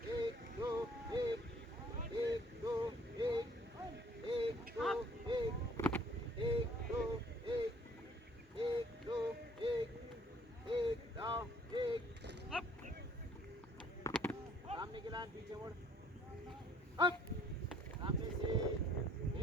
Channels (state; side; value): normal; both; correlation 0.59